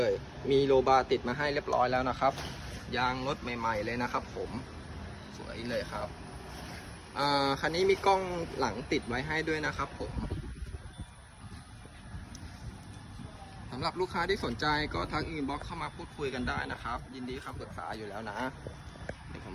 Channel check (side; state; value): both; identical; correlation 1.00